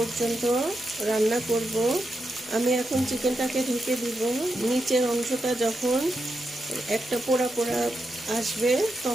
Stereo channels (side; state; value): both; normal; correlation 0.85